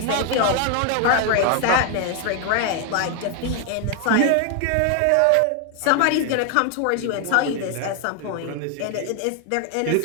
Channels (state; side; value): different; both; correlation 0.01